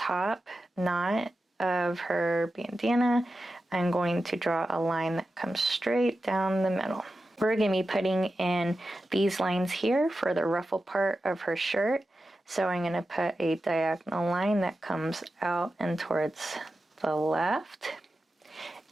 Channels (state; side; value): normal; both; correlation 0.92